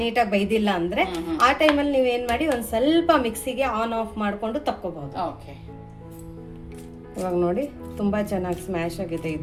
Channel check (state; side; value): identical; both; correlation 1.00